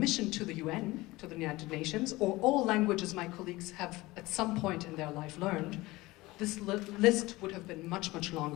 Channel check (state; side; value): quieter; right; 20.1 dB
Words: to the UN, to the United Nations, or all languages my colleagues have at some point in their life learned, this list would have been much, much